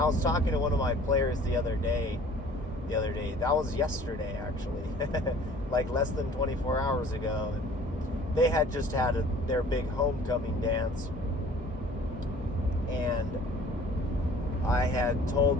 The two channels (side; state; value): both; normal; correlation 0.50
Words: was talking to one of my players the other day, the other day. That was yesterday, actually. Like less than 24 hours ago. And they had just had their big homecoming dance. And I had